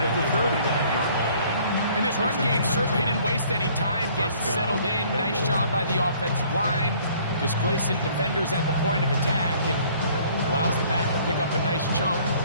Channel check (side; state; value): both; inverted; correlation -0.57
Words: of the 30. And this run game certainly didn't waste any time getting settled in. Nice job by the offensive line, displacing defenders at the point of attack, and allows the back to pick up a nice chunk